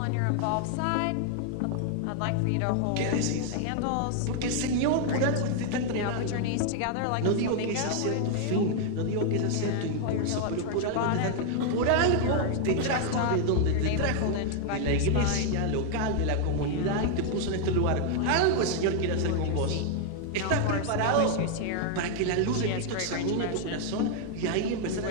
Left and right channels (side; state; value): both; different; correlation 0.00